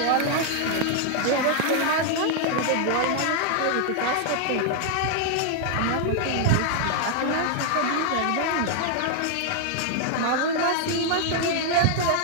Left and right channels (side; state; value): both; different; correlation 0.00